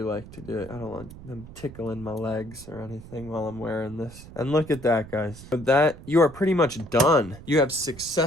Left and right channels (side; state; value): right; noise; rumble, 17 dB below the sound